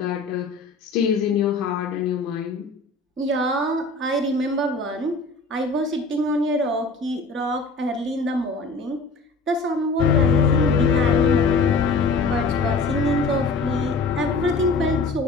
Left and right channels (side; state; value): right; quieter; 3.5 dB